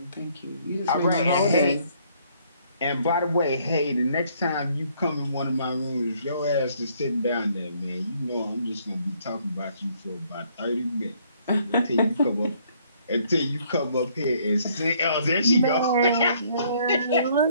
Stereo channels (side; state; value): both; inverted; correlation -0.65